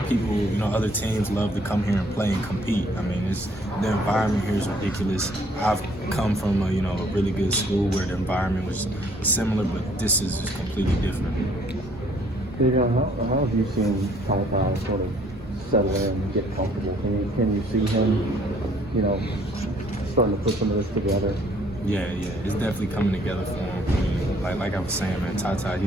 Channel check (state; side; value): normal; both; correlation 0.61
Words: people, you know, other teams love to come here and play and compete. I mean, the environment here is ridiculous. I've come from a really good school where the environment was similar, but this is just completely different. Davion, how have you seen Ty sort of settle in and get comfortable? Can you see him, starting to put some of this together? Yeah, it's definitely coming together for him. I mean, like I was saying, man, Ty,